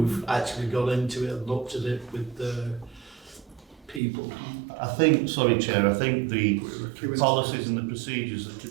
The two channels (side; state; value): left; drops out; at 4.0 s